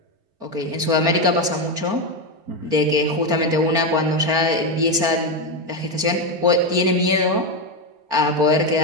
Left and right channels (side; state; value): left; late; 4.5 ms